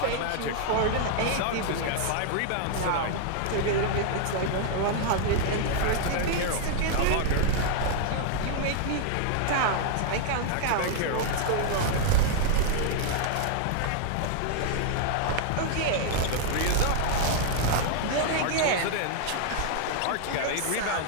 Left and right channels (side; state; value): both; different; correlation 0.00